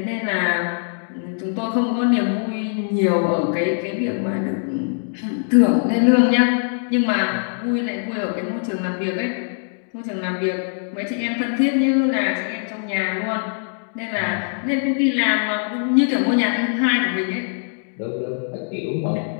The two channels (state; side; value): silent; right; digital silence